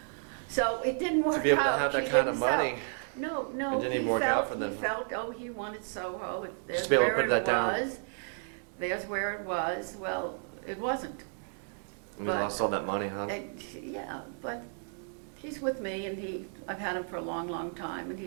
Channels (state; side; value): silent; left; 56 dB below the other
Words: So it didn't work To be able to out. have She that kind of didn't sell. money. No, It didn't even work out for he them. felt, oh, he wanted Soho. There's Just be able to where put it that down. was. There's where it was. Well, it wasn't. And But- you lost all that money, huh? Yeah, but he's with me, and I've had him for a long, long time, and